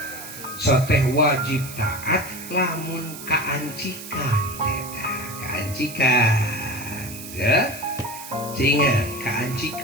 soteh wajib taat lamun kaancikan eta, kaancikan ya. Sehingga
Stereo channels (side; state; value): right; noise; hiss, 12 dB below the sound